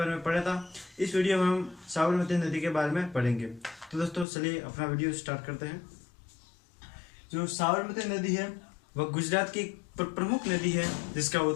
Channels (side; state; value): right; drops out; at 4.2 s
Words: में पढ़ा था। इस वीडियो में हम साबरमती नदी के बारे में पढ़ेंगे। तो दोस्तों, चलिए अपना वीडियो स्टार्ट करते हैं। जो साबरमती नदी है वह गुजरात की प्रमुख नदी है, जिसका